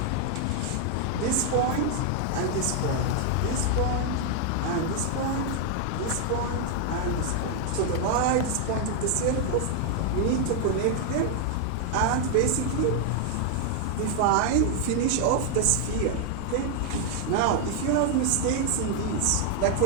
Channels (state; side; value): different; both; correlation 0.00